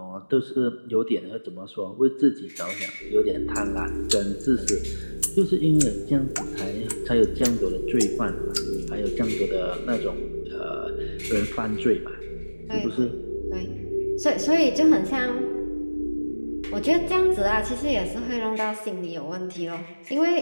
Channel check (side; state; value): both; inverted; correlation -1.00